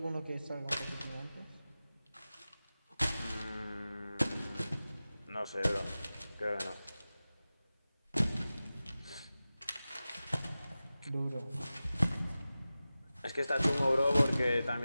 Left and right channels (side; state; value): both; inverted; correlation -0.96